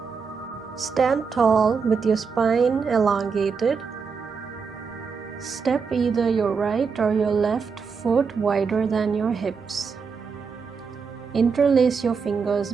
Stand tall with your spine elongated. Step either your right or your left foot wider than your hips. Interlace your fingers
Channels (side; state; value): left; quieter; 5.5 dB